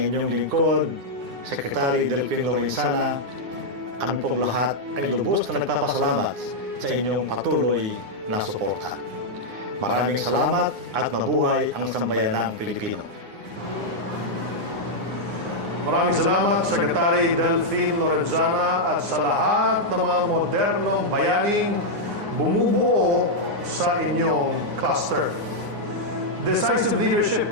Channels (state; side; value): late; left; 9.7 ms